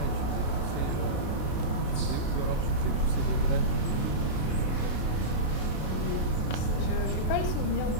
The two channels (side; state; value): right; late; 33 ms